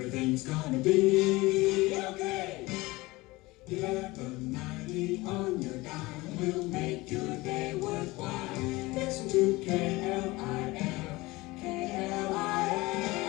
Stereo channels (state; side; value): quieter; right; 21.3 dB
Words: gonna be okay. 1190 on your dial will make your day worthwhile. Listen to KLIF,